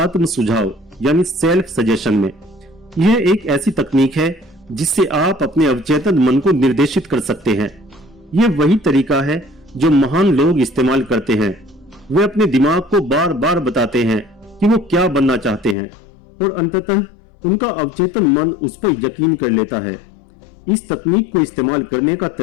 सुझाव यानी सेल्फ सजेशन में। यह एक ऐसी तकनीक है जिससे आप अपने अवचेतन मन को निर्देशित कर सकते हैं। यह वही तरीका है जो महान लोग इस्तेमाल करते हैं। वे अपने दिमाग को बार बार बताते हैं कि वो क्या बनना चाहते हैं, और अंततः उनका अवचेतन मन उस पर यकीन कर लेता है। इस तकनीक को इस्तेमाल करने का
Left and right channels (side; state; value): right; drops out; at 15.8 s